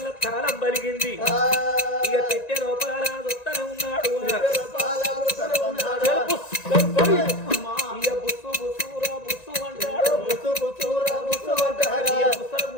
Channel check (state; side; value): late; right; 1.9 ms